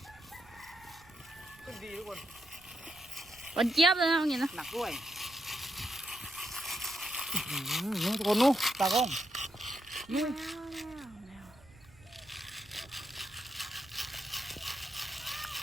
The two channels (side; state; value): right; noise; rumble, 25 dB below the sound